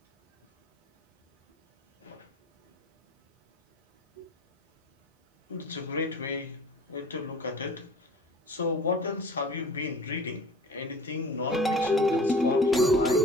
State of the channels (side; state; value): both; normal; correlation 0.43